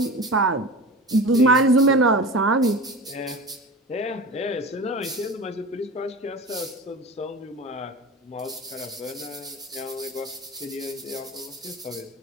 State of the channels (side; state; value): both; normal; correlation 0.32